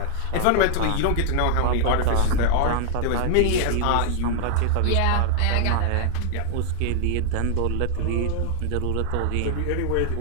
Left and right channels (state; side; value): different; both; correlation 0.00